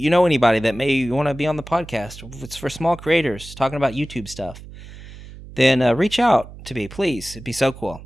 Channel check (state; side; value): noise; right; hum, 16 dB below the sound